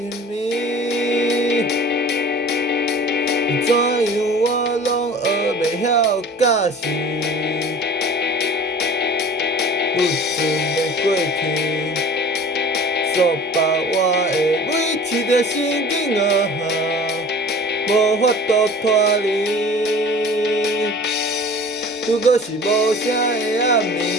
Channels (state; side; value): normal; both; correlation 0.43